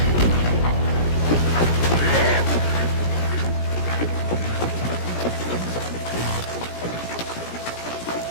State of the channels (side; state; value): right; late; 17 ms